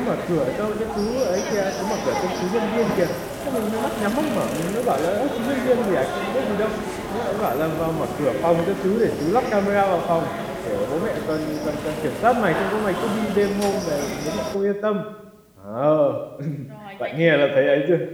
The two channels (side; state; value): both; identical; correlation 1.00